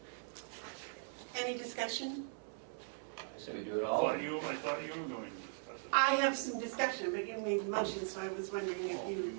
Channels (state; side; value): silent; left; 51 dB below the other